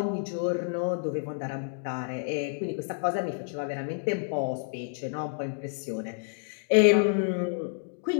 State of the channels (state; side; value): silent; right; digital silence